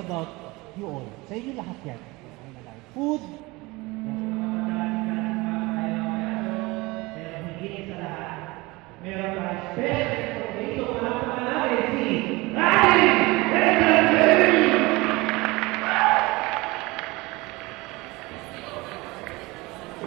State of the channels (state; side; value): quieter; left; 22.9 dB